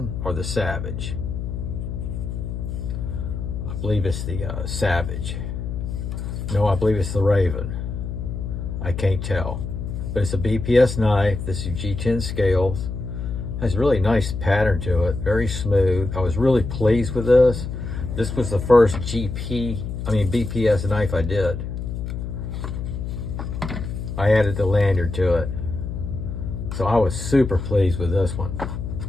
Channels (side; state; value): left; noise; hum, 5 dB below the sound